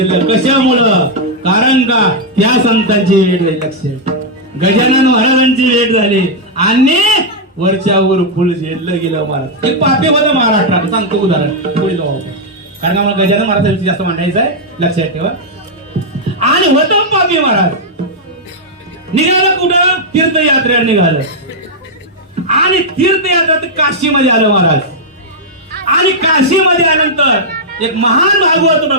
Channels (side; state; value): both; normal; correlation -0.04